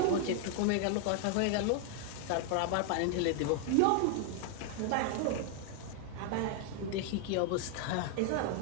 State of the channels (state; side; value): different; both; correlation 0.00